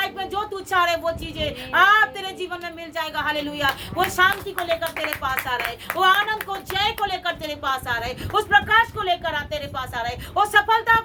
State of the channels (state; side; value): identical; both; correlation 1.00